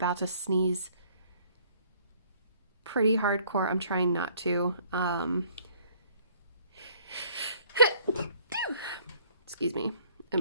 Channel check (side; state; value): both; inverted; correlation -0.59